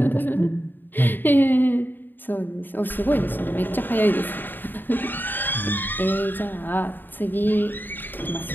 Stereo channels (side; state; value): right; late; 0.092 ms